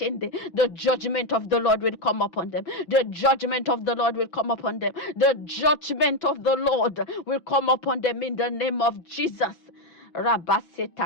The judgment of the Lord will come upon them. The judgment of the Lord will come upon them. The judgment of the Lord will come upon them in the name of Jesus.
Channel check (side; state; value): right; late; 6.1 ms